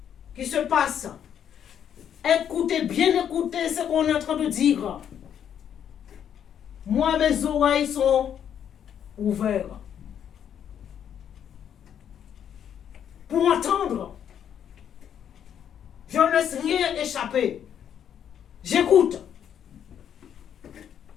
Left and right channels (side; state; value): right; quieter; 9.1 dB